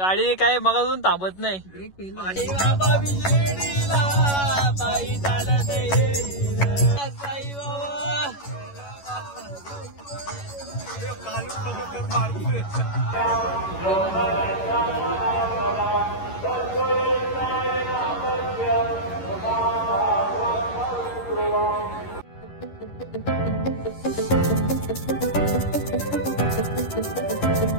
काय मगाजून थांबत नाही.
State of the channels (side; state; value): right; late; 11 ms